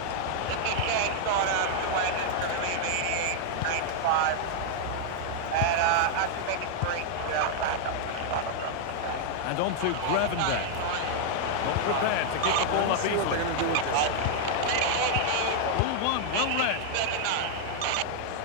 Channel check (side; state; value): both; different; correlation -0.01